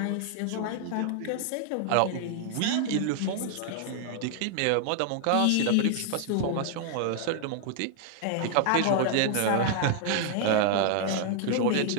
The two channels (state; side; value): different; both; correlation 0.00